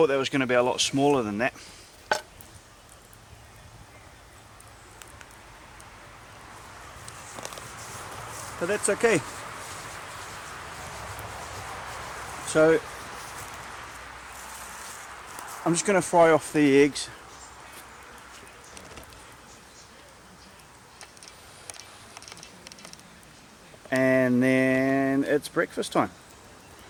that was going to be a lot smaller than that. But that's okay. So I'm just going to fry off the eggs. And then it's breakfast time.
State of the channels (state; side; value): identical; both; correlation 1.00